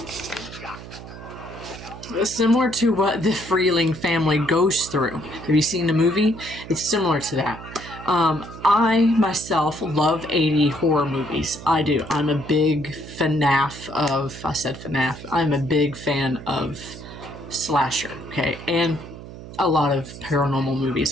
similar to what the Freeling family goes through. Have you seen the movie? It's similar to that. I myself love 80 horror movies. I do. I'm a big FNAF of, I said FNAF. I'm a big fan of slasher, okay? And a lot of paranormal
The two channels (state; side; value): noise; right; hum, 14 dB below the sound